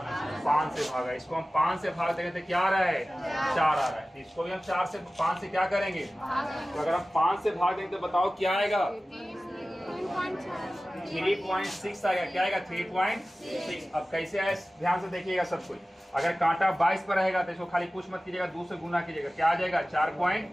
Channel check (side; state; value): both; normal; correlation 0.97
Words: 5 से भागा। इसको हम 5 से भाग देंगे तो क्या आ रहा है? 4 आ रहा है। इसको भी हम 4 से 5 से क्या करेंगे? तो अगर हम 5 से भाग देंगे तो बताओ क्या आएगा? 3.6 आएगा। क्या आएगा? 3.6। अब कैसे आए ध्यान से देखिएगा सब कुछ। अगर कांटा 22 पर रहेगा तो इसको खाली कुछ मत कीजिएगा, 2 से गुना कीजिएगा। क्या आ जाएगा?